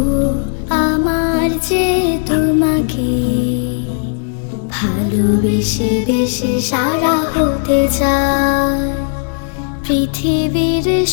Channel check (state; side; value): silent; right; 62 dB below the other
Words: আমার যে তোমাকে ভালোবেসে বেশি সারা হতে চাই। পৃথিবীর